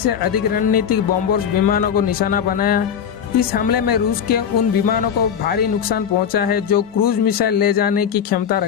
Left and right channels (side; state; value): right; quieter; 8.1 dB